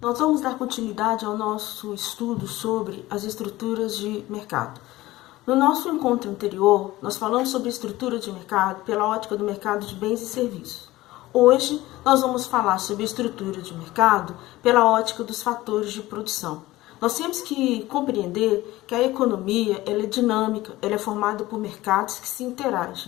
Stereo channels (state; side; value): quieter; right; 17.7 dB